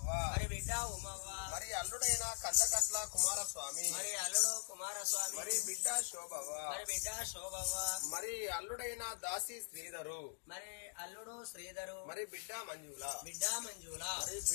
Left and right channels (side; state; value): right; silent; digital silence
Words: మరి బిడ్డ ఉమవ్వ మరి అల్లుడైన కందకట్ల కుమారస్వామి మరి అల్లుడు కుమారస్వామి మరి బిడ్డ శోభవ్వ మరి బిడ్డ శోభవ్వ మరి అల్లుడైన దాసి శ్రీధరు మరి అల్లుడు శ్రీధరు మరి బిడ్డ మంజుల బిడ్డ మంజుల మరి